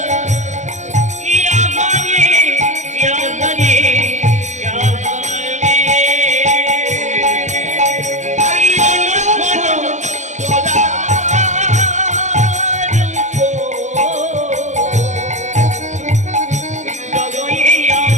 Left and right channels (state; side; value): late; left; 0.34 ms